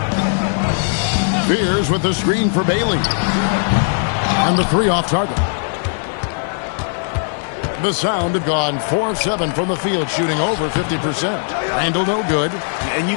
Fears with the screen for Bailey. And the 3 off target. The Sound have gone 4 of 7 from the field, shooting over 50%. Randall no good. And you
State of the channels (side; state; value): right; silent; 60 dB below the other